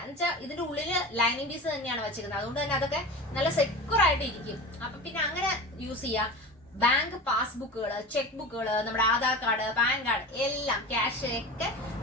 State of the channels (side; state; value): both; normal; correlation 0.32